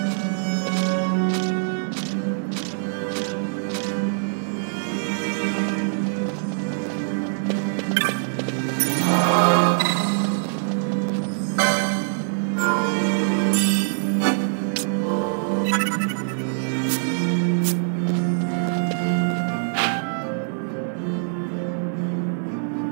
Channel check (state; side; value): silent; left; digital silence